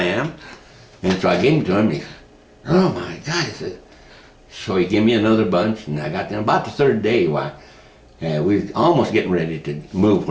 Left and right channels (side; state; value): both; identical; correlation 1.00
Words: am. And so I gave them to him, and he said, oh my God, he said. So he gave me another bunch, and I got them about the third day. We was almost getting ready to move